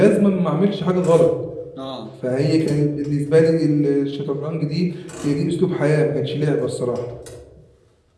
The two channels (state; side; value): identical; both; correlation 1.00